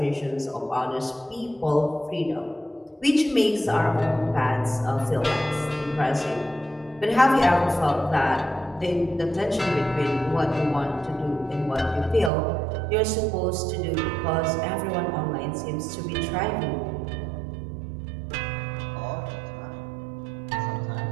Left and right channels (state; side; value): drops out; left; at 12.3 s